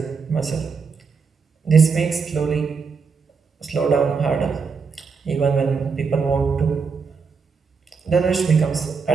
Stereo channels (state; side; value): quieter; left; 5.3 dB